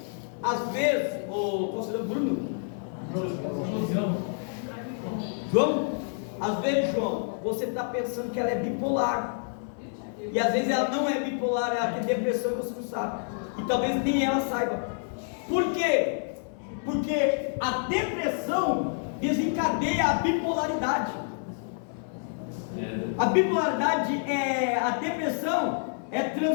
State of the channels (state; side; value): silent; right; 59 dB below the other